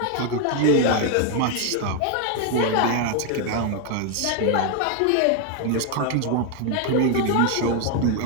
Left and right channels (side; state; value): both; different; correlation 0.01